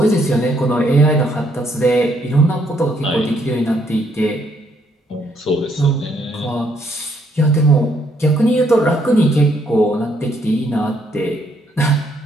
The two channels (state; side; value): normal; both; correlation 0.70